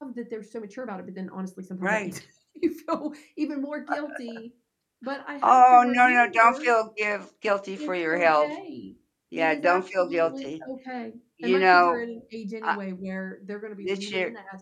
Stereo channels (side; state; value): both; identical; correlation 1.00